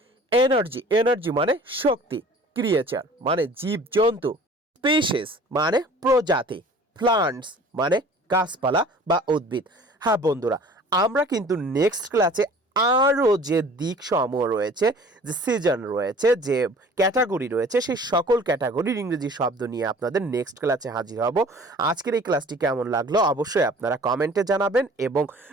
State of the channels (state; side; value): normal; both; correlation 0.48